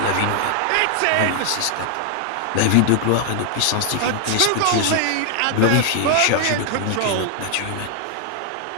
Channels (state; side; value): different; both; correlation 0.00